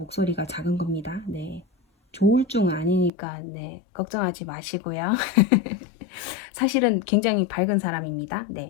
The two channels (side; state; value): right; drops out; at 3.1 s